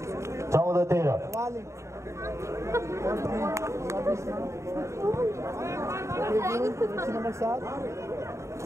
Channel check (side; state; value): left; late; 0.14 ms